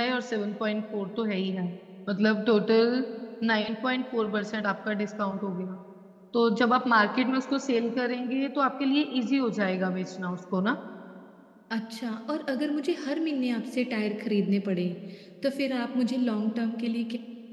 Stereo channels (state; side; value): identical; both; correlation 1.00